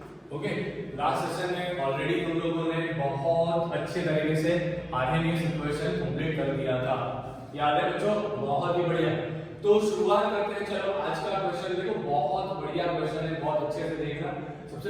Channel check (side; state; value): both; identical; correlation 1.00